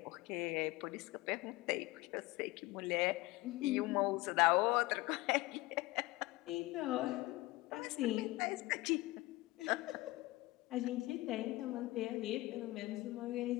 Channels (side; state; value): right; quieter; 20.2 dB